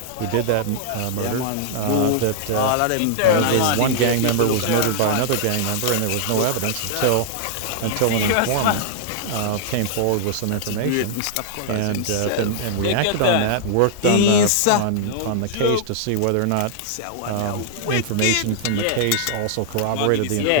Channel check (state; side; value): different; both; correlation -0.01